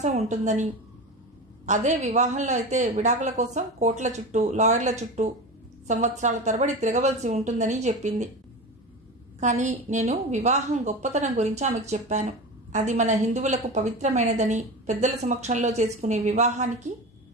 ఉంటుందని, అదే వివాహంలో అయితే విడాకుల కోసం కోర్టుల చుట్టూ లాయర్ల చుట్టూ సంవత్సరాల తరబడి తిరగవలసి ఉంటుందని చెప్పింది. కానీ నేను వివాహం గొప్పతనం గురించి ఆమెకు చెప్పాను. అది మన హిందువులకు పవిత్రమైనదని, పెద్దల సమక్షంలో చేసుకునే వివాహానికి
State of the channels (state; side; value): normal; both; correlation 0.27